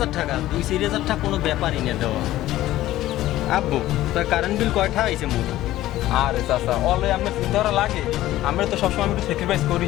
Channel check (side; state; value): right; quieter; 15.0 dB